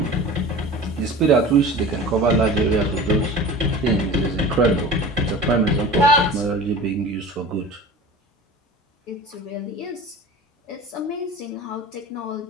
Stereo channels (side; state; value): both; normal; correlation 0.37